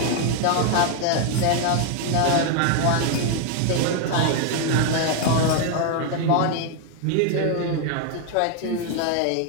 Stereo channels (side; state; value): both; different; correlation 0.01